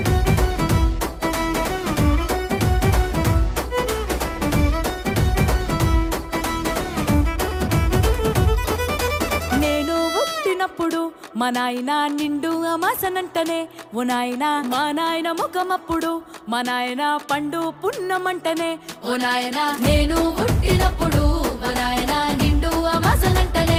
నేను పుట్టినప్పుడు మా నాయన నిండు అమాసనంటనే ఓ నాయన మా నాయన ముఖమప్పుడు మా నాయన పండు పున్నమంటనే ఓ నాయన నేను పుట్టినప్పుడు మా నాయన నిండు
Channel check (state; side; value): identical; both; correlation 1.00